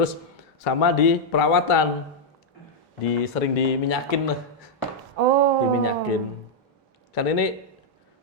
sama di perawatan, sering diminyakin lah. Oh. Diminyakin. Kan ini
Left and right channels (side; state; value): both; normal; correlation -0.03